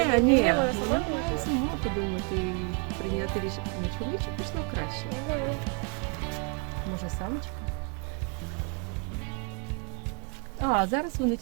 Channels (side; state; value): left; quieter; 35.2 dB